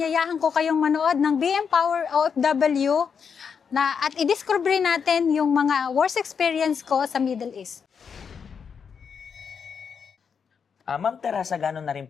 ko kayong manood ng BM Power OFW at i-discover natin yung mga worst experience ko sa Middle East. Ma'am Teresa, gano'n na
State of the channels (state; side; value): quieter; right; 6.5 dB